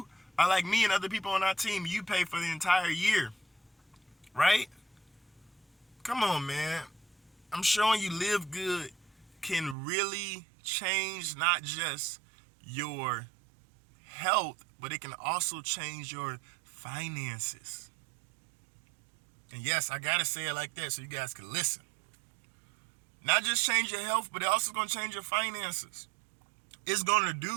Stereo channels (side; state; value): left; drops out; at 9.8 s